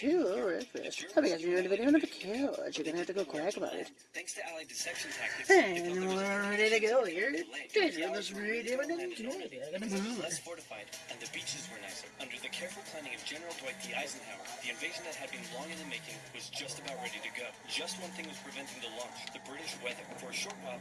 of Wreckfest. I guess you're in the video on the couch. You're gonna have to go quack about it. Thanks to Allied deception tactics, And we're ready to go here. Let's read it less fortified, and the beaches were nicer. Under the careful planning of General Dwight D. Eisenhower, the invasion that had been long in the making was just about ready to go. Just one thing was preventing the launch: the British weather. For a short while,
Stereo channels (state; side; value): identical; both; correlation 1.00